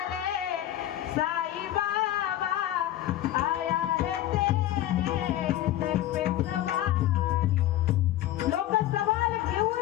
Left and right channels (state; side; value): quieter; right; 13.4 dB